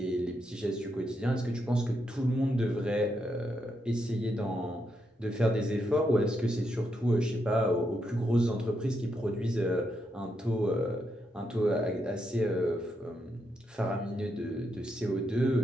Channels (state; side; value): normal; both; correlation 0.81